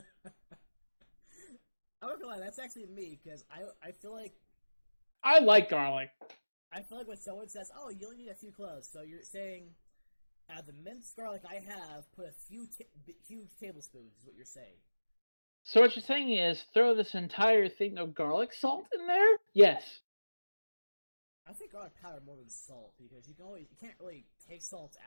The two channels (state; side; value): inverted; both; correlation -1.00